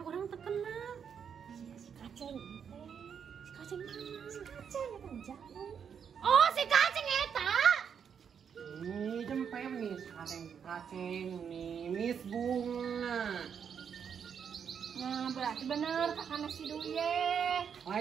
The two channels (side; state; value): left; quieter; 7.4 dB